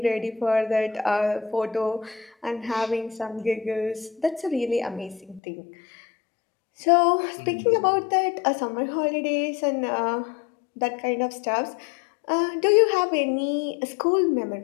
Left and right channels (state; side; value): drops out; right; at 5.4 s